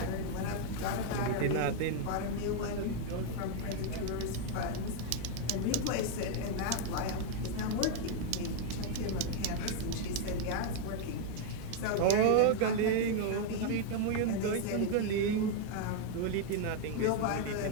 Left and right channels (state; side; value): different; both; correlation 0.00